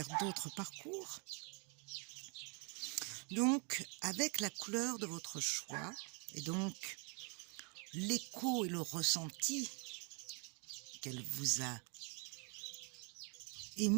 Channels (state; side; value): quieter; left; 36.2 dB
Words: d'autres parcours. Donc, avec la couleur de votre choix, et donc l'écho et le ressenti qu'elle vous a